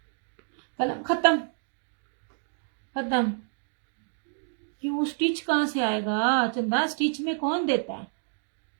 कलम खत्म खत्म। क्यों, स्टिच कहां से आएगा चंदा? स्टिच में कौन देता है?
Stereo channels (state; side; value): silent; left; 59 dB below the other